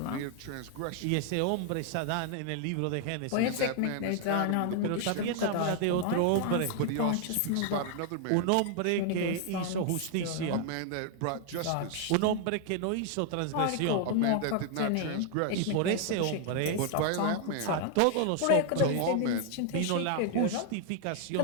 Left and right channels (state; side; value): different; both; correlation 0.00